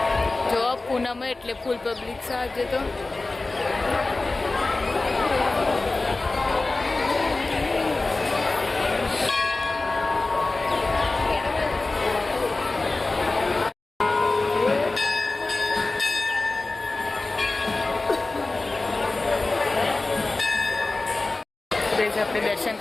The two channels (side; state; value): right; quieter; 3.3 dB